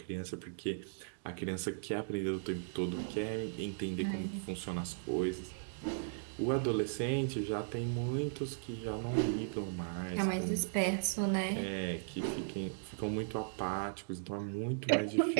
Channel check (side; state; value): left; silent; digital silence